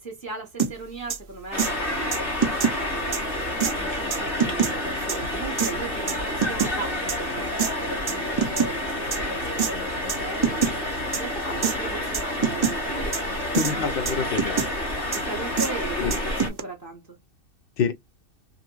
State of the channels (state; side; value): late; right; 2.6 ms